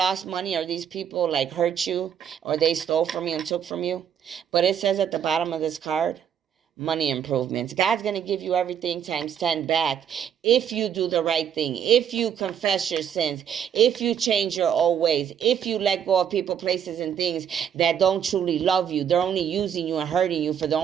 money or these people like hurt you or they stole from you and took from you. But it says at the bottom of this card, money improvements. God's going to give you everything times 10 back if you do the right thing, if you confess your sins, if you change your old ways, if you let go of people, places, and things that don't truly love you. They're only using you and hurting you for their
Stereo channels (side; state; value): left; quieter; 8.6 dB